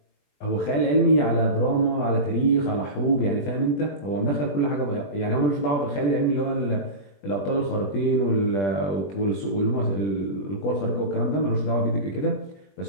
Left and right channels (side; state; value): right; late; 20 ms